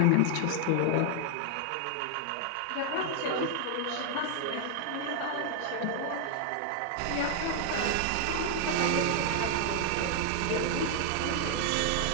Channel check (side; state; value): both; different; correlation 0.00